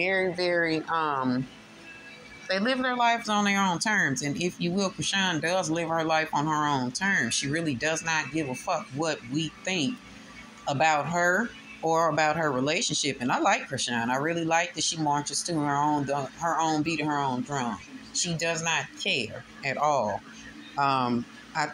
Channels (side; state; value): both; identical; correlation 1.00